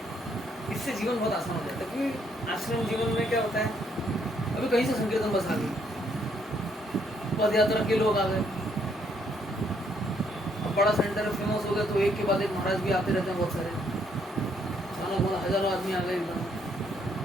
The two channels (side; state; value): both; normal; correlation 0.70